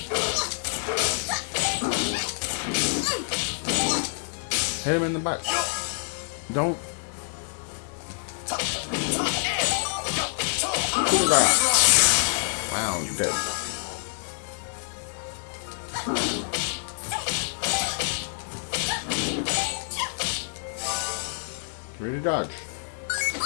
Hit him in the back. Don't. Wow, You've done nothing wrong. Ready to dodge.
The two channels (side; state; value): right; silent; digital silence